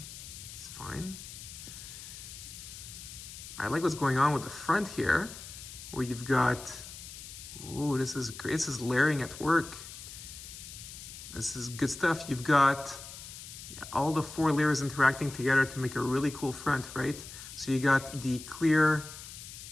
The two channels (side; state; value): left; noise; hiss, 13 dB below the sound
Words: fine. I like what's going on with the front here, where you've got, ooh, this is great. This is layering at work. This is good stuff. You've got all the 4 layers interacting together to make a really cool front, right? So you got the clear